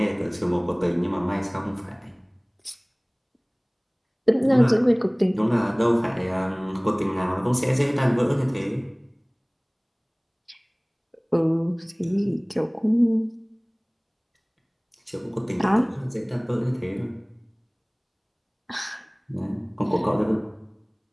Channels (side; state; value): both; identical; correlation 1.00